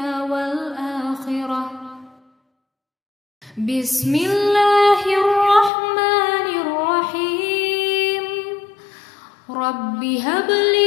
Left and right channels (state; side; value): drops out; right; at 5.7 s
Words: wal akhirah. Bismillahirrahmanirrahim. Rabbi